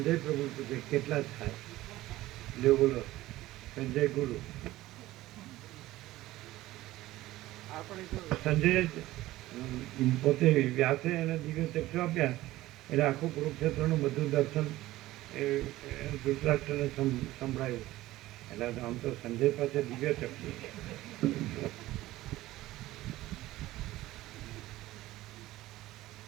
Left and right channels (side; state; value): left; quieter; 16.6 dB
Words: પ્રભુ પૂછે કેટલા થાય? લ્યો બોલો. સંજય ગુરુ સંજય પોતે વ્યાસે એને દિવ્ય ચક્ષુ આપ્યા એટલે આખું કુરુક્ષેત્રનું બધું દર્શન એ ધૃતરાષ્ટ્રને સંભળાયું. એટલે આમ તો સંજય પાસે દિવ્ય ચક્ષુ છે.